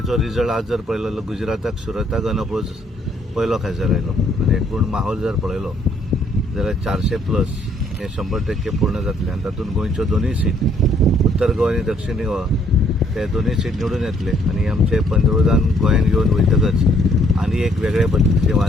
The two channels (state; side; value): normal; both; correlation 0.66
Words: रिजल्ट आज जर पळयलो, गुजराताक सुरताक अनअपोज पयलो खासदार आयलो आनी एकूण माहोल जर पळयलो जाल्यार 400+ हे 100% पूर्ण जातले आनी तातूंत गोंयच्यो दोनूय सीट, उत्तर गोवा आनी दक्षिण गोवा, ते दोनूय सीट निवडून येतले आनी आमचे पंतप्रधान गोंयांत येवन वयतकच आनी एक वेगळे पद्धतीचे